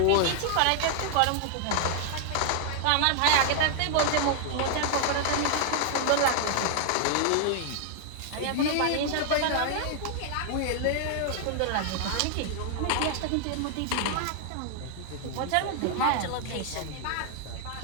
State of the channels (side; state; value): both; different; correlation 0.00